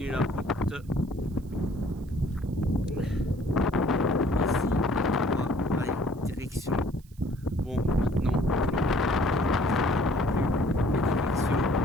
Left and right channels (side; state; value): right; noise; hiss, 29 dB below the sound